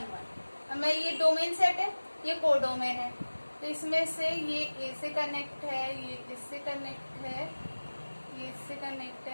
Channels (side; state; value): both; inverted; correlation -1.00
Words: 1। हमें ये डोमेन सेट है, ये कोडोमेन है, तो इसमें से ये ए से कनेक्ट है, ये इससे कनेक्ट है, ये इससे कनेक्ट